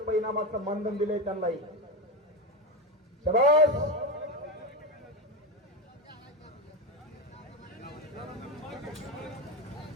इनामाचं मानधन दिले त्यांनाही. शाबास.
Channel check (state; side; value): normal; both; correlation 0.15